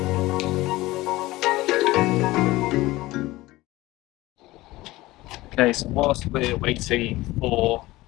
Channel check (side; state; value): right; quieter; 18.8 dB